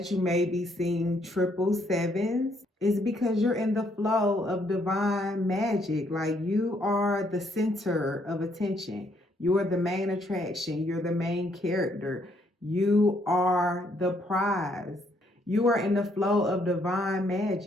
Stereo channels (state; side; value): normal; both; correlation 0.70